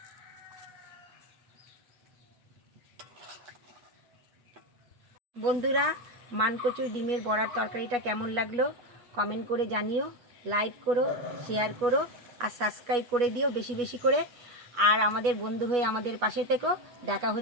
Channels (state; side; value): late; left; 8.3 ms